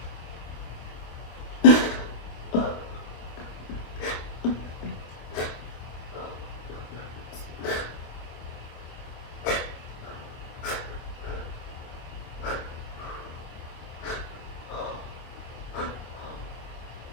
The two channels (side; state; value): right; late; 26 ms